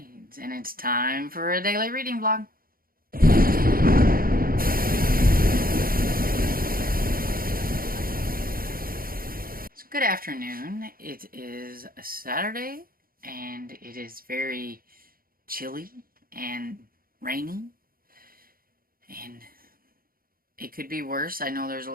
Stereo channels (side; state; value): left; late; 0.42 ms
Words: and it's time for a daily reading vlog. So good afternoon. It is a Saturday, and it is very chilly and rainy, and it could be worse. I know there's a